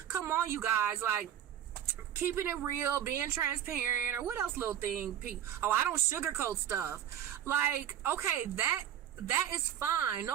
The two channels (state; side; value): quieter; left; 10.4 dB